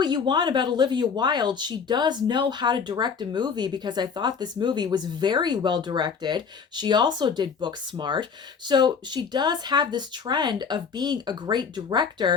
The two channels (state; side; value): quieter; right; 6.1 dB